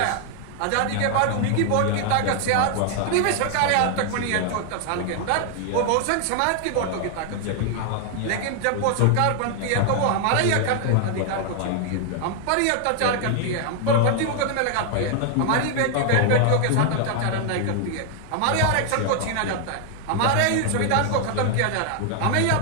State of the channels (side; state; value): both; different; correlation 0.00